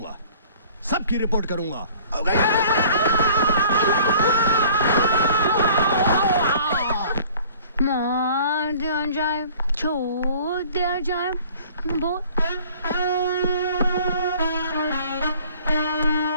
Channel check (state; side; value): inverted; both; correlation -0.51